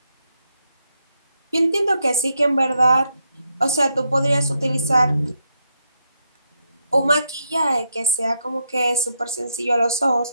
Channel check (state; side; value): inverted; both; correlation -0.80